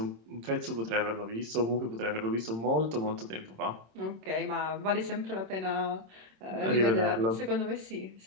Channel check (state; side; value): late; left; 26 ms